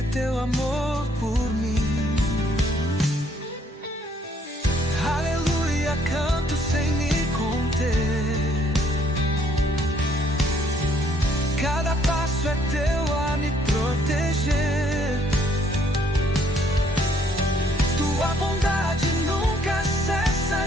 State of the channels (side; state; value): both; normal; correlation 0.66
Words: teu amor por mim. Aleluia, canto sem me conter. Cada passo é teu a me proteger. Tua bondade nunca cessa